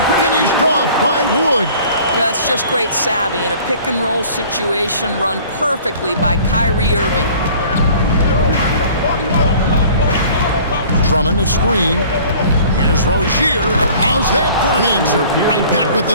finished off by Wood. That's just great savvy in a pick-and-roll situation run perfectly by Kyrie Irving. Drummond the screen. Here's Rozier. How's that for an answer? Right back with the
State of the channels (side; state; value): both; inverted; correlation -0.49